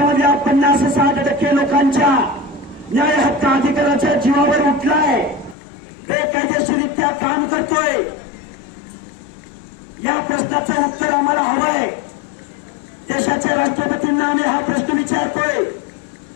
50-60% लोकांच्या न्याय हक्क अधिकाराच्या जीवावर उठलाय, बेकायदेशीररित्या काम करतोय। या प्रश्नाचं उत्तर आम्हाला हवंय। देशाच्या राष्ट्रपतींना आम्ही हा प्रश्न विचारतोय,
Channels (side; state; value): right; drops out; at 5.6 s